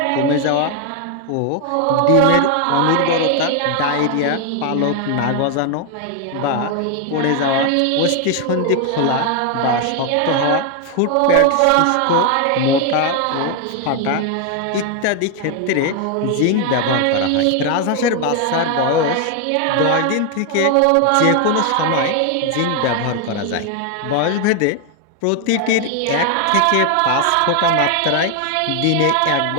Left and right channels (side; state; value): both; different; correlation 0.01